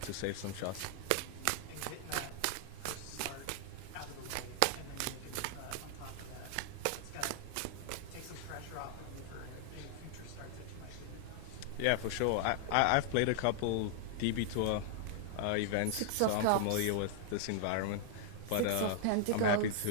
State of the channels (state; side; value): different; both; correlation -0.01